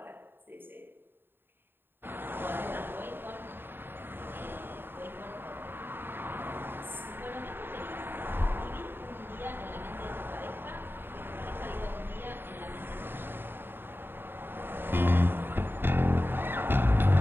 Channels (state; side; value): late; left; 0.099 ms